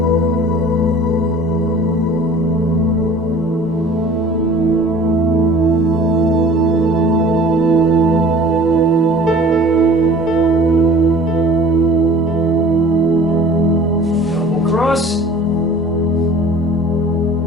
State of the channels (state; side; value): normal; both; correlation 0.46